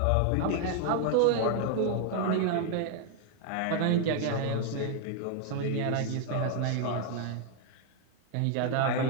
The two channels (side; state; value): both; different; correlation 0.00